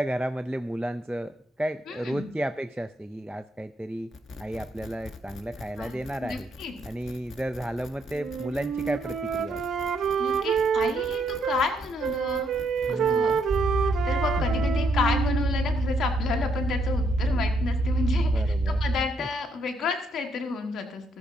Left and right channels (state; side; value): normal; both; correlation 0.73